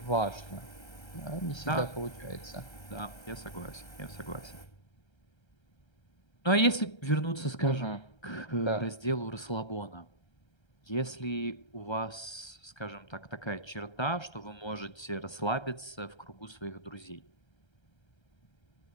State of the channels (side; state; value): right; late; 1.3 ms